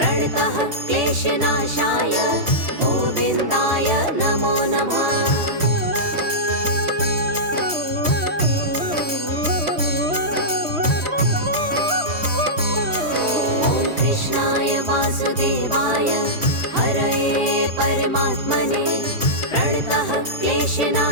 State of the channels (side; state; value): left; late; 3.1 ms